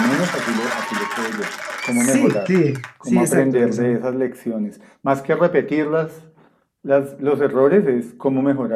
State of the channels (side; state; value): both; identical; correlation 1.00